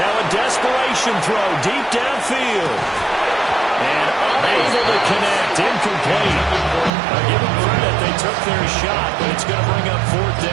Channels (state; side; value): drops out; left; at 6.9 s